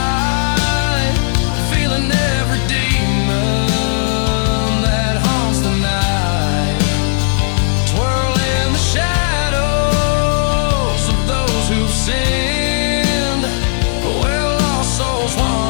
feeling every demon that haunts the night. Twirl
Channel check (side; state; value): right; silent; digital silence